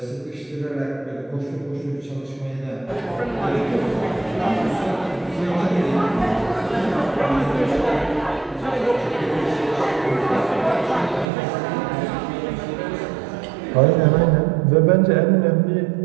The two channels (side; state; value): left; drops out; at 11.2 s